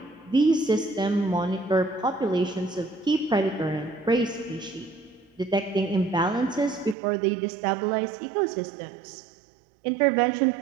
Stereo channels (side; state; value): left; drops out; at 7.0 s